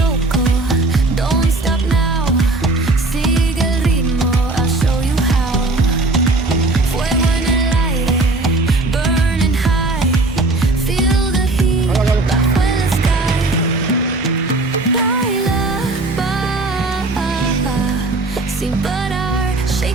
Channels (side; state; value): left; quieter; 3.1 dB